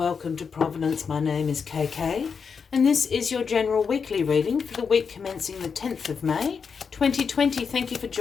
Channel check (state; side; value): quieter; right; 5.9 dB